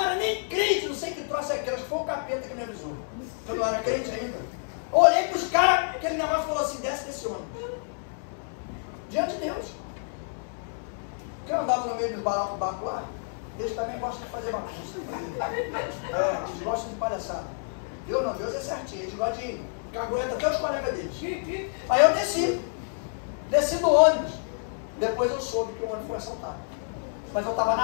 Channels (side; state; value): right; silent; 59 dB below the other